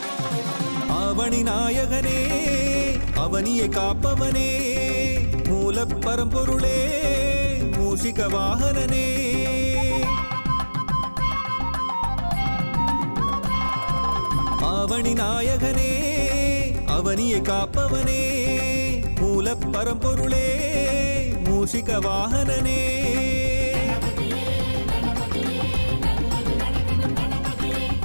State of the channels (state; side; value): inverted; both; correlation -1.00